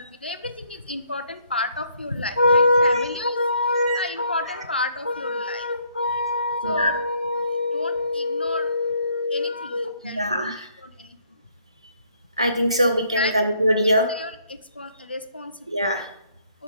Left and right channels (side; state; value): both; inverted; correlation -0.68